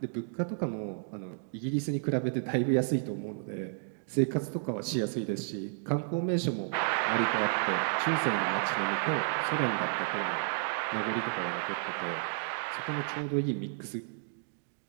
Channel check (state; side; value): silent; left; digital silence